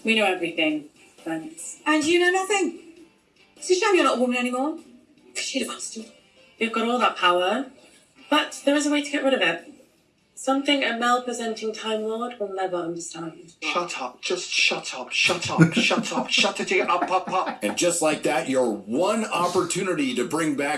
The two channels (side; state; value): both; identical; correlation 1.00